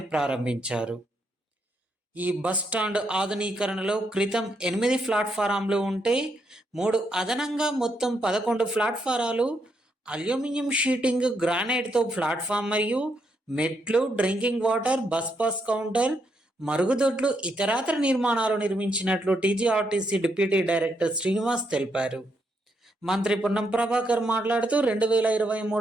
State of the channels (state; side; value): normal; both; correlation 0.78